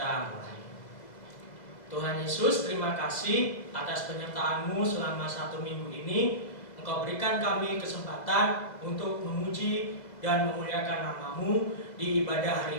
mulai. Tuhan Yesus, terima kasih atas penyertaan-Mu selama 1 minggu ini. Engkau berikan kami kesempatan untuk memuji dan memuliakan nama-Mu di ibadah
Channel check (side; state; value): right; late; 2.0 ms